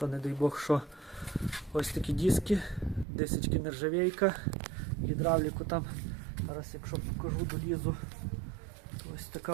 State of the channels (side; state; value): left; drops out; at 3.1 s